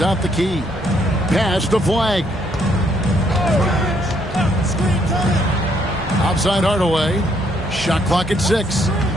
the key. Pass to Flag. Outside Hardaway. Shot clock at 6.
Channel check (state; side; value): normal; both; correlation 0.71